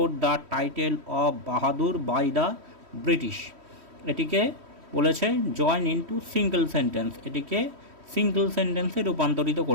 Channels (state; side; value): late; left; 3.1 ms